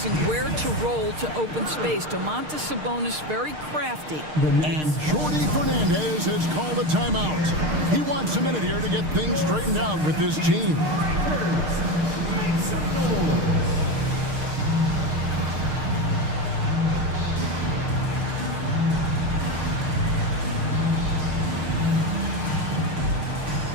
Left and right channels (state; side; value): late; left; 6.5 ms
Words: where to roll to open space. Domantas Sabonis very crafty. And Jordy Fernandez has called a timeout. He wants a minute here to get things straightened out with his team.